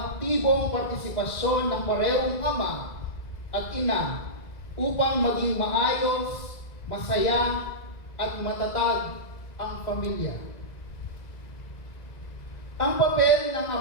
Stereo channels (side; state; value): right; late; 2.0 ms